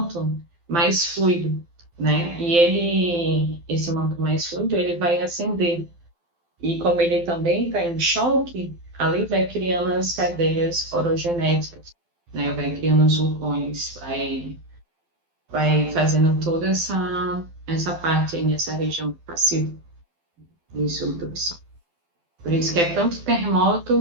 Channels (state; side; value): late; left; 12 ms